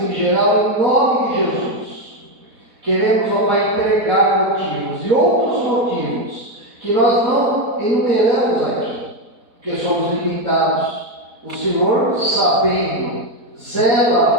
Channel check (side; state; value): left; late; 4.4 ms